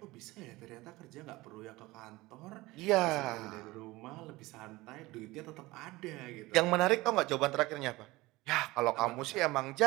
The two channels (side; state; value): left; quieter; 20.3 dB